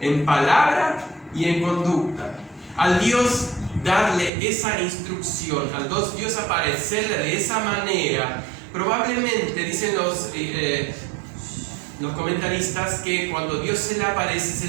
en palabra y en conducta. Al Dios darle esa instrucción, al Dios aparecerle de esa manera, probablemente, dicen los comentaristas, que cuando Dios se le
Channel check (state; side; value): drops out; left; at 4.3 s